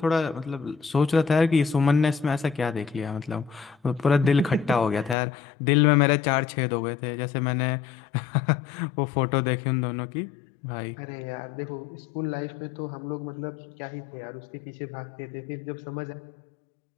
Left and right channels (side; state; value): right; drops out; at 5.2 s